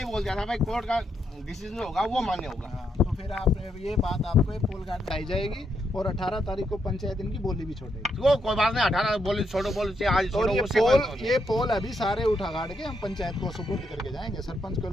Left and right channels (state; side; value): normal; both; correlation 0.79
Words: बोल दिया था भाई कोर्ट का डिसीजन होगा वो मान्य होगा। तो फिर आपने ये बात, आपको ये पोल गार्ड लाई जाएगी और 18 तारीख को पंचायत इनकी बोली भी छोड़ेगी। वो कोई बात नहीं, 18 बोली छोड़ो, बोली आज छोड़ो। ये पोल अभी सारे उठा गाड़ के हम पंचायत को सुपुर्द करके जाएंगे, सरपंच को